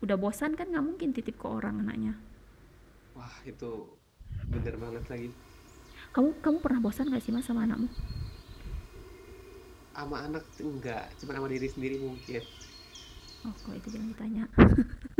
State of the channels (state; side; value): identical; both; correlation 1.00